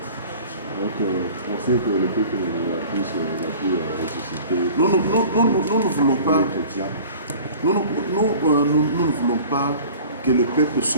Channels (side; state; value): both; inverted; correlation -0.44